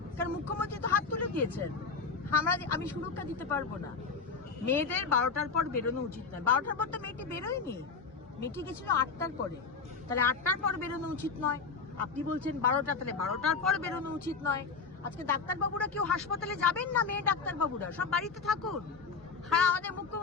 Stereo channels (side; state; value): right; quieter; 5.0 dB